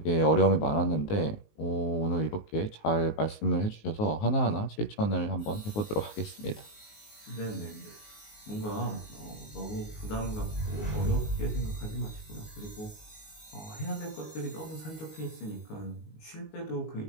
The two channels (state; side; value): late; right; 19 ms